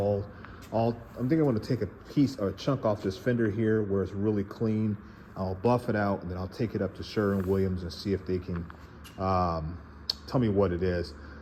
I'm thinking I'm going to take a piece or a chunk off this fender here where it's really clean. I'll buff it out, and then I'll take it up to Sherwin-Williams and see if they can tell me what it is.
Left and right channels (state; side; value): identical; both; correlation 1.00